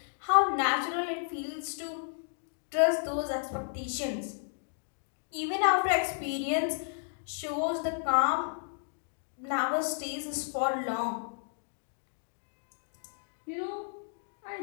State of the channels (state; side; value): silent; right; digital silence